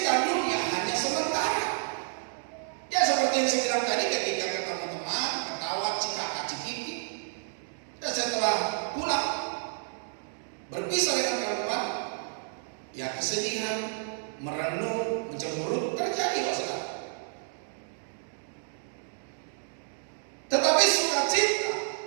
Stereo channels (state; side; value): silent; left; digital silence